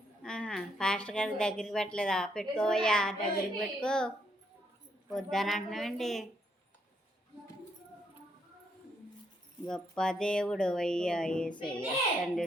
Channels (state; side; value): normal; both; correlation 0.74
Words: ఫాస్ట్ గారి దగ్గరికి పెట్టలేదా? పెట్టుకోవయ్యా, దగ్గరికి పెట్టుకో. వద్దని అంటున్నావండి. గొప్ప దేవుడు అయ్యా యేసయ్య,